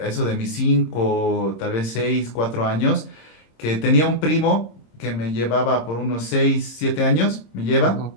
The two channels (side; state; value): right; late; 26 ms